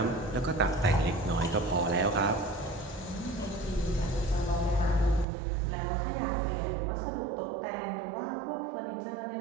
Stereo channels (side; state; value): left; drops out; at 5.2 s